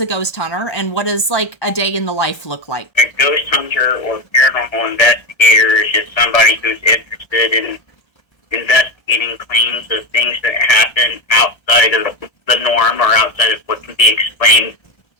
ghost hunter and what does like a day in the life look like? A ghost hunter or paranormal investigator is just somebody who's interested in investigating claims of things that happen outside of the norm or outside of what can be explained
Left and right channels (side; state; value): right; late; 1.3 ms